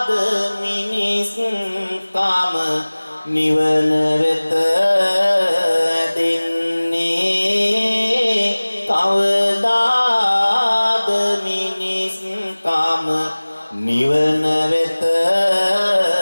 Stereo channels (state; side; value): inverted; both; correlation -1.00